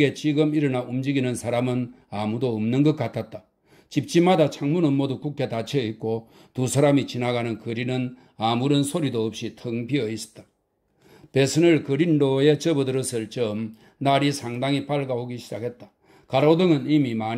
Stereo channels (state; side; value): identical; both; correlation 1.00